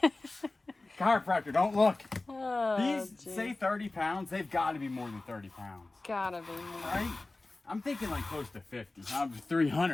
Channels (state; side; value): quieter; right; 3.1 dB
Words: Chiropractor, don't look. Oh, these geez. say 30 pounds. They've got to be more than 30 pounds. Gotta be more. Right? I'm thinking like close to 50.